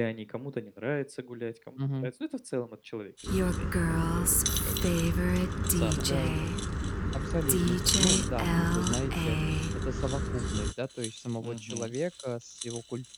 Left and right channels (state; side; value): identical; both; correlation 1.00